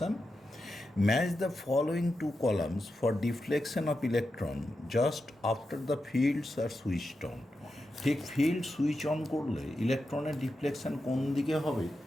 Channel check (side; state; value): both; normal; correlation 0.89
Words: Match the following two columns for deflection of electron just after the fields are switched on. ঠিক field switch on করলে ইলেকট্রনের deflection কোন দিকে হবে